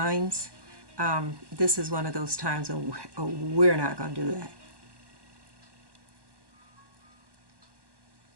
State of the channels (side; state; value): left; late; 1.1 ms